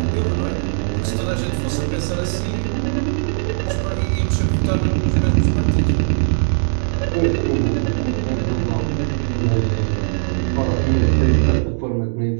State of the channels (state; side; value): silent; left; digital silence